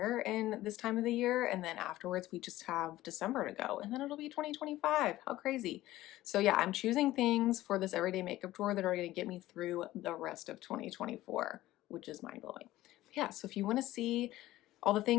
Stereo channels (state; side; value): quieter; right; 15.8 dB